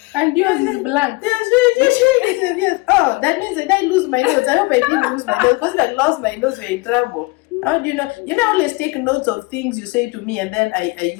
And yours is blank. You're showing it to the viewers. Oh, that means that I lose my notes. I hope I didn't lose my notes. Because if I lost my notes, we're in trouble. How do you know? You know, I always take notes of things you say to me and then I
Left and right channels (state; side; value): quieter; right; 24.5 dB